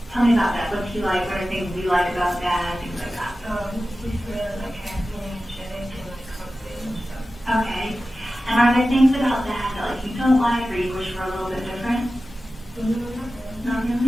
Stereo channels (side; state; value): both; normal; correlation 0.94